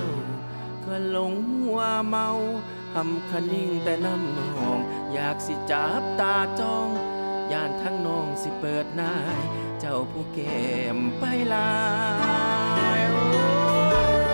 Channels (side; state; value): both; inverted; correlation -1.00